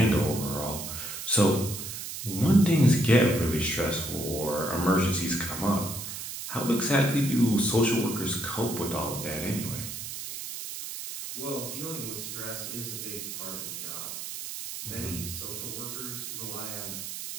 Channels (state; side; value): noise; right; hiss, 7 dB below the sound